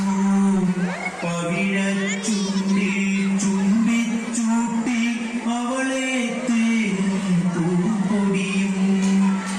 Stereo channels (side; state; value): both; identical; correlation 1.00